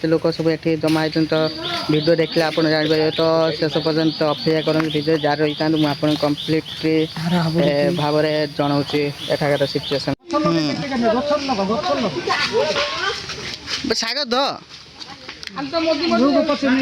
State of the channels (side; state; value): both; identical; correlation 1.00